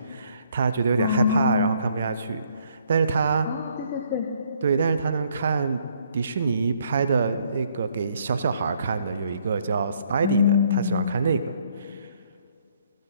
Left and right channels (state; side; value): inverted; both; correlation -0.66